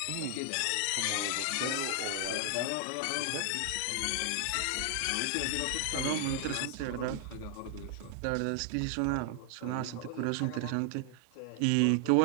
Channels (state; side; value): different; both; correlation 0.00